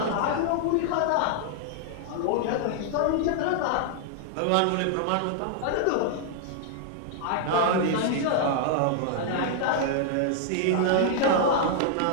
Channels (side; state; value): both; different; correlation 0.00